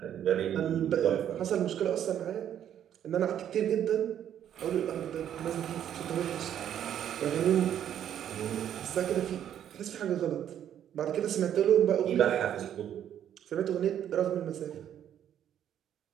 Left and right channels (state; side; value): quieter; left; 10.1 dB